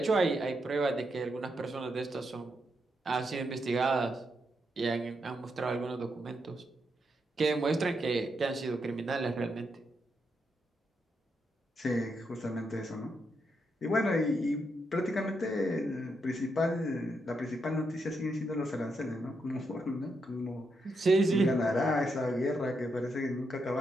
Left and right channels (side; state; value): both; normal; correlation 0.81